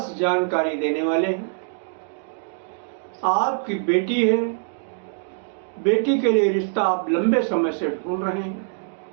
जानकारी देने वाले हैं। आपकी बेटी है, बेटी के लिए रिश्ता आप लंबे समय से ढूंढ रहे हैं।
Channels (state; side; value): silent; left; digital silence